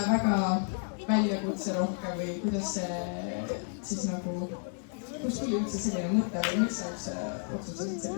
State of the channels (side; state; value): right; silent; 57 dB below the other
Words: väljakutse rohkem või kuidas see siis nagu, kust tuli üldse selline mõte või miks sa üldse otsustasid